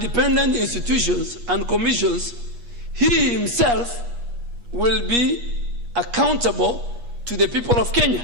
institutions and commissions, he himself will be accountable to the people of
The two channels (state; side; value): late; left; 8.4 ms